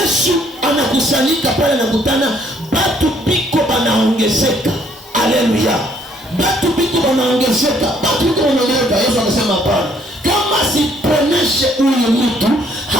anakusanyika pale, anakutana batu biko banaongezeka. Haleluya. Batu biko banaongezeka. Yesu anasema hapana, kama siponeshe huyu mtu,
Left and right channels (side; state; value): both; normal; correlation 0.65